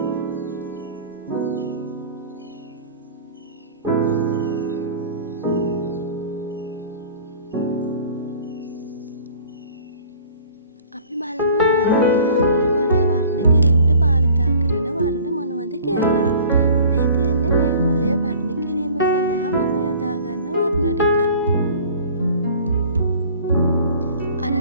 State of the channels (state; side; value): inverted; both; correlation -0.48